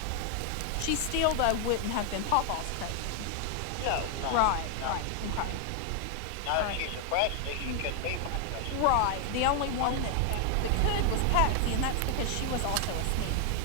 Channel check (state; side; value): different; both; correlation 0.00